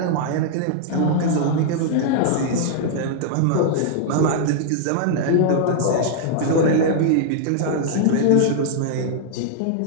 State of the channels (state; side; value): different; both; correlation -0.01